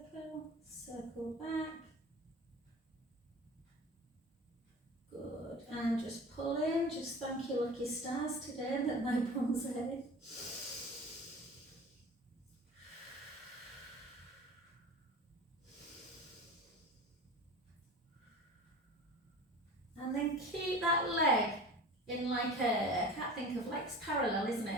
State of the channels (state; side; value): normal; both; correlation 0.36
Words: circle back. Good, and just pull in, just thank your lucky stars today that my bum's head. And then keep that leg in like a, I can't think of, legs parallel, isn't